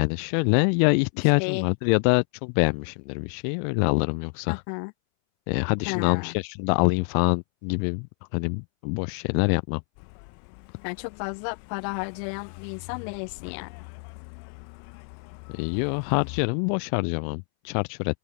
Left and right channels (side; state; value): right; silent; 61 dB below the other